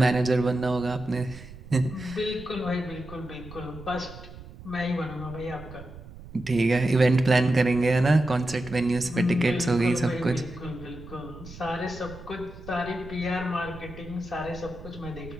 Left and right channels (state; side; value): noise; right; rumble, 16 dB below the sound